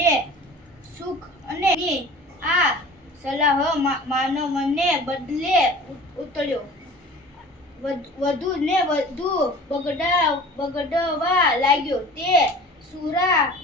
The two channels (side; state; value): both; normal; correlation 0.42